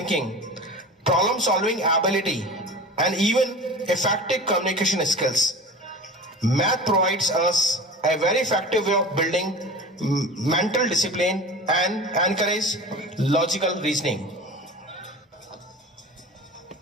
problem solving ability, and even effective communication skills. Math provides us a very effective way of building mental discipline and encourage logical reasoning.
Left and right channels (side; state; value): both; normal; correlation 0.35